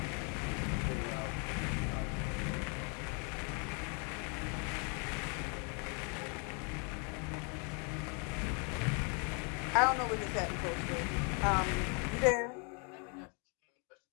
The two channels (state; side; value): quieter; right; 36.2 dB